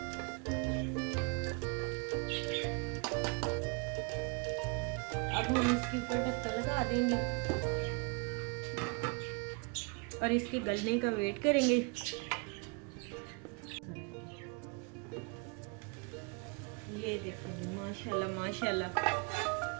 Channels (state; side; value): quieter; left; 33.6 dB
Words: अब हम इसके ऊपर ढक्कन लगा देंगे और इसके गलने का वेट करेंगे। ये देखो माशाल्लाह माशाल्लाह